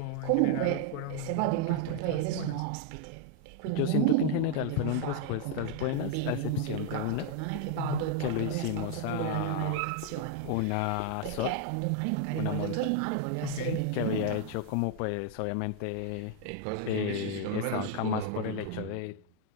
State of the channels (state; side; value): different; both; correlation 0.00